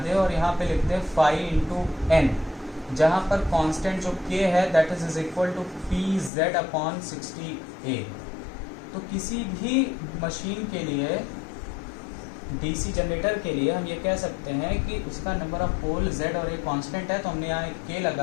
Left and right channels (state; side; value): drops out; right; at 6.3 s